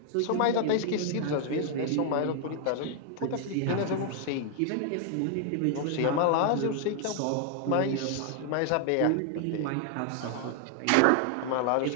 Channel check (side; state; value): both; different; correlation 0.00